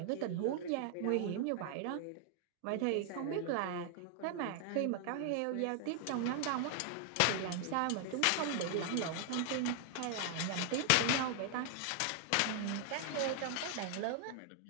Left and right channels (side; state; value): both; different; correlation 0.00